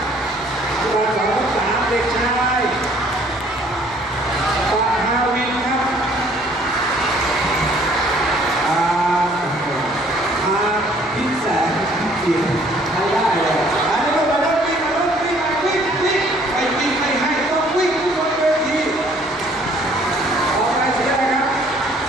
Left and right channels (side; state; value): both; normal; correlation 0.59